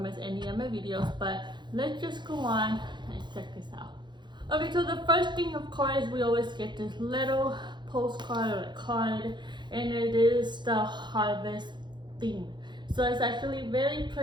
miss any of my videos. But let's just go on and check this out. Okay, so the first thing, of course, we always get this little postcard or a card, and it is the harvest theme. So it's actually very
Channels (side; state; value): left; late; 0.22 ms